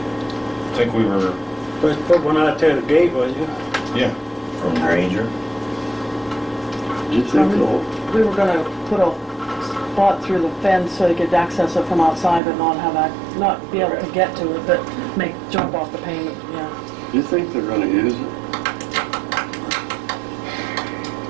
think we were, Let's put one out there at the gate, was you? yeah. From Granger. Did you think so? We were gonna put a spot through the fence so you could access it from outside, but not be able to get to it, but jump off the payment, yeah. Do you think they're gonna use it?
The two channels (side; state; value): left; drops out; at 12.4 s